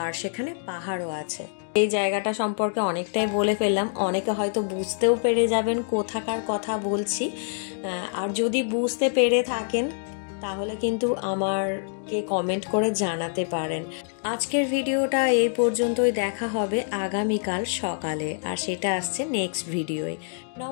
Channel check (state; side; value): silent; right; digital silence